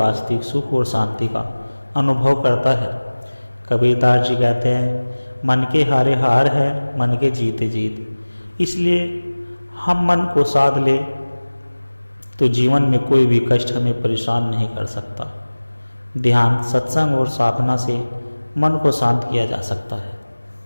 सुख और शांति का अनुभव करता है। कबीरदास जी कहते हैं, मन के हारे हार है, मन के जीते जीत। इसलिए हम मन को साध ले तो जीवन में कोई भी कष्ट हमें परेशान नहीं कर सकता। ध्यान, सत्संग और साधना से मन को शांत किया जा सकता है।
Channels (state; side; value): inverted; both; correlation -1.00